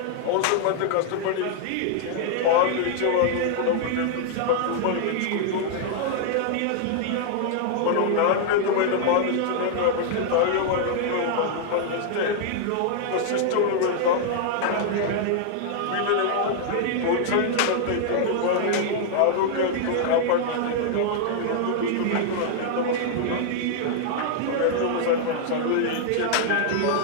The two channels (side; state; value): both; different; correlation 0.00